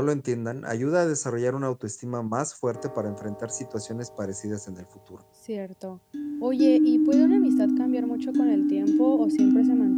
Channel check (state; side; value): identical; both; correlation 1.00